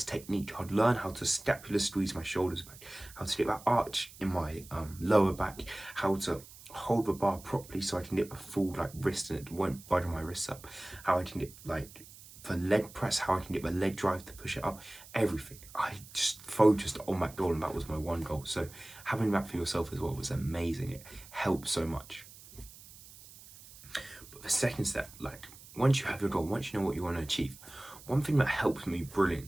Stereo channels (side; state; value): right; noise; hiss, 19 dB below the sound